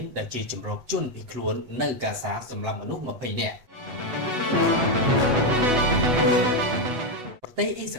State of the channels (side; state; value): left; late; 8.1 ms